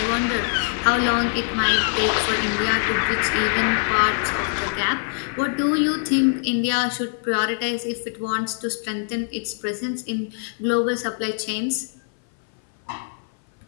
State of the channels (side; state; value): right; silent; 58 dB below the other